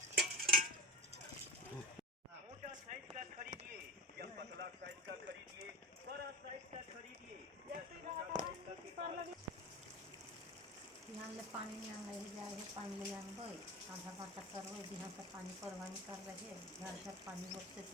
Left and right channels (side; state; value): both; normal; correlation 0.26